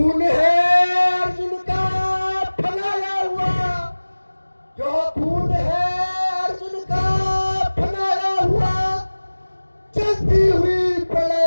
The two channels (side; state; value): both; inverted; correlation -1.00